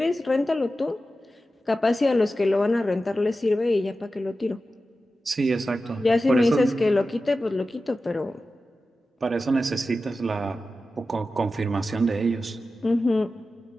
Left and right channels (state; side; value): normal; both; correlation 0.93